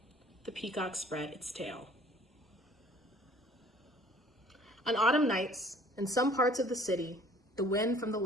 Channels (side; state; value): both; normal; correlation 0.54